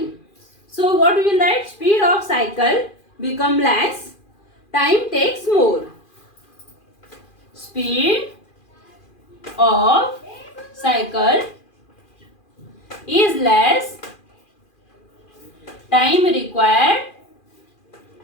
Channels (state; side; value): late; right; 2.4 ms